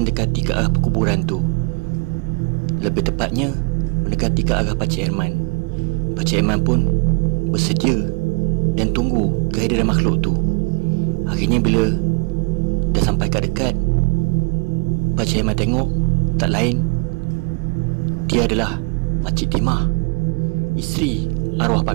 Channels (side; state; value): left; quieter; 32.1 dB